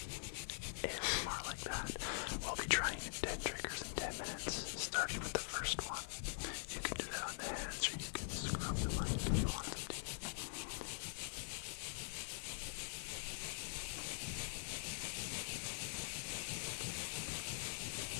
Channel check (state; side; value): silent; right; digital silence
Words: ASMR like that. We'll be trying 10 triggers in 10 minutes, starting with the first one. You can do that on the hands, or you can scrub the mic if you want to.